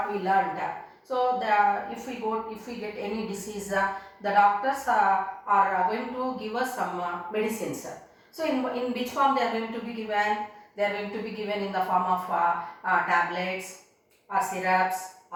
we learned, so if we get any disease, the doctors are going to give us some medicines. So, in which form they are going to be given? They are going to be given in the form of tablets or syrups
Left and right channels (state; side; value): identical; both; correlation 1.00